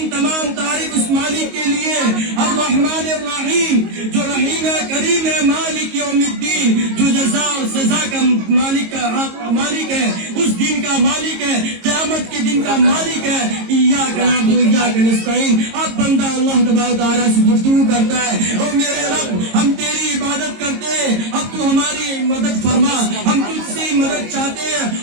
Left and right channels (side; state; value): left; late; 22 ms